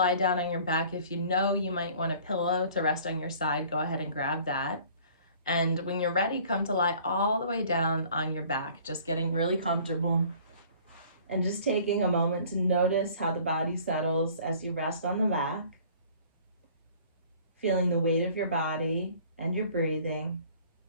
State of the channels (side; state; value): both; inverted; correlation -0.52